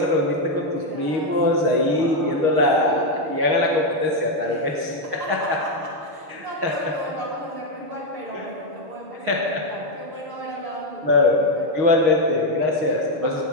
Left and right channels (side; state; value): left; late; 6.4 ms